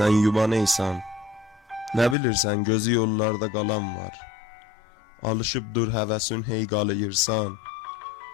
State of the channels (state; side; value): drops out; right; at 2.1 s